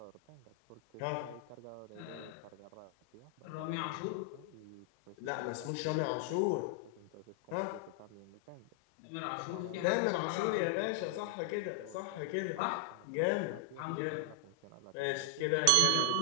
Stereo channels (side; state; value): both; different; correlation 0.00